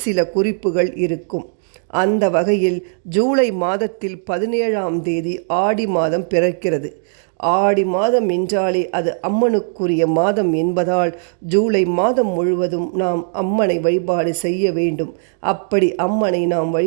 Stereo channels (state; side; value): silent; left; 67 dB below the other